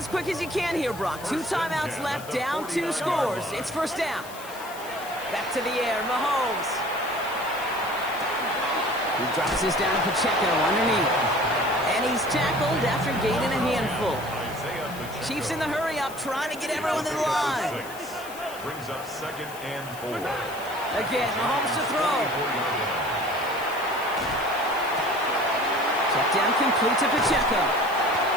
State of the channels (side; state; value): left; noise; hiss, 16 dB below the sound